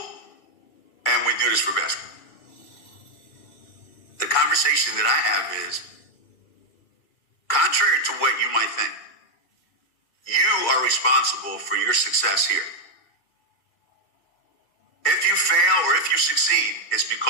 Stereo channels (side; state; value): right; late; 2.3 ms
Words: and we do this for basketball. The conversation that I have is, contrary to what you might think, you are responsible for your success here. If you fail or if you succeed, it's